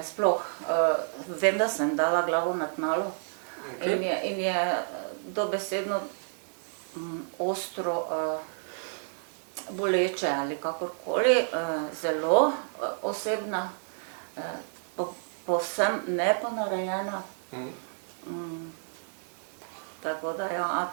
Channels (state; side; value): silent; left; digital silence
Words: sploh, vem, da sem dala glavo na tnalo in je dobesedno ostro boleče ali kakorkoli, zelo osebna, povsem neponarejena. Tako da, ja,